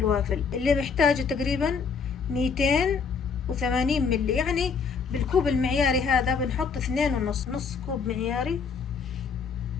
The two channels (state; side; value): quieter; right; 5.6 dB